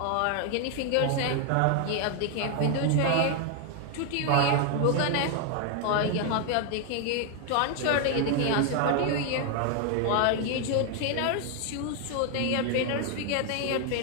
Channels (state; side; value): different; both; correlation 0.00